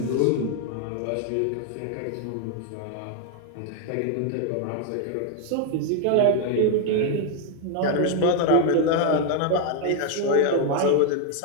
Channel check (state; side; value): different; both; correlation 0.00